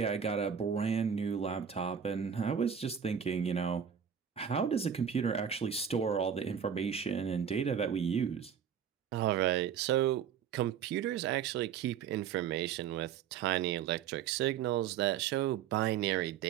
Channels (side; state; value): left; quieter; 8.1 dB